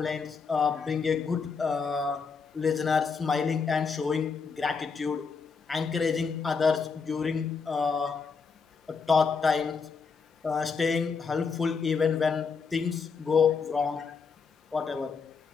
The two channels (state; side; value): quieter; right; 5.3 dB